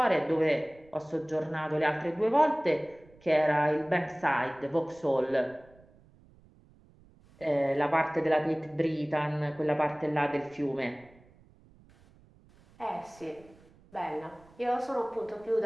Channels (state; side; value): noise; right; rumble, 27 dB below the sound